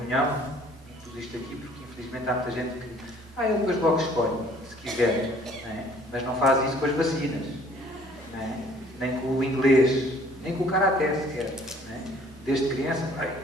Tudo isto aqui porque infelizmente há muita gente que Ele depois logo escolhe, se quiser. Não é? Mas não faz isso com as vacinas. Não é? Nem com o inglês, nem com o karaté sequer. Não é? Desde criança,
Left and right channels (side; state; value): both; normal; correlation 0.57